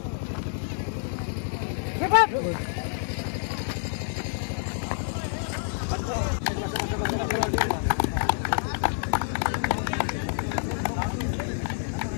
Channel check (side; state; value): right; silent; digital silence